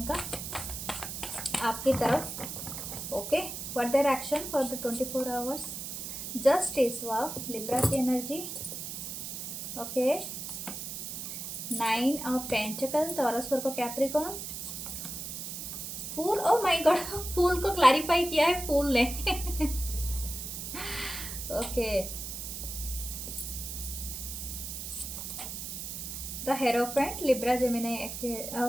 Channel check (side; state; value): right; noise; hiss, 6 dB below the sound